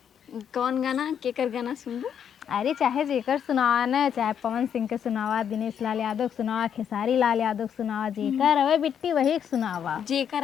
कौन गाना केकर गाना सुनबू? अरे चाहे जेकर सुनावा न चाहे पवन सिंह के सुनावा दिनेश लाल यादव के सुनावा खेसारी लाल यादव के सुनावा जेकर अवे बिट्टी वही सुनावा जेकर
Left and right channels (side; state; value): right; quieter; 8.4 dB